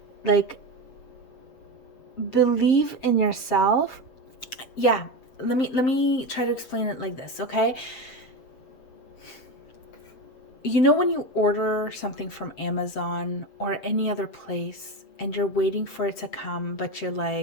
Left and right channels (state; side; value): late; right; 7.7 ms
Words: Like, believe in yourself. Yeah, let me try to explain it like this, okay? You know when you order something from Amazon or any other place and you're waiting for it to come, but you're